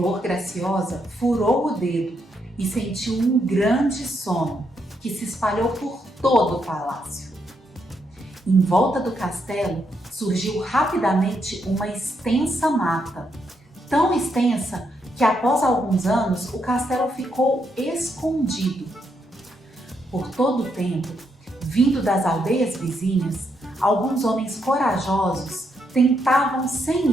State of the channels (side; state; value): both; normal; correlation 0.78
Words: Graciosa furou o dedo e sentiu um grande sono que se espalhou por todo o palácio. Em volta do castelo surgiu rapidamente uma extensa mata, tão extensa que após alguns anos o castelo ficou escondido. Por todo o tempo, vindo das aldeias vizinhas, alguns homens corajosos tentavam